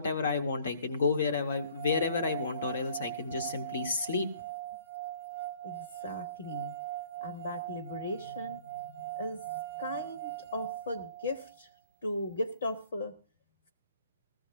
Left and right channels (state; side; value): inverted; both; correlation -0.55